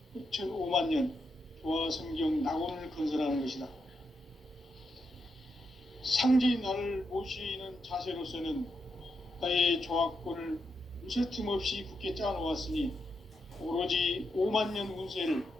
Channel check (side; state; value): both; normal; correlation 0.83